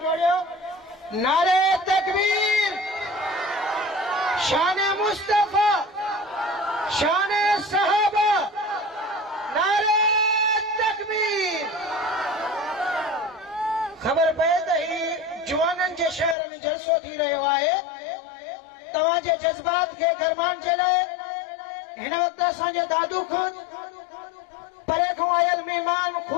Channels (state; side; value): drops out; right; at 16.4 s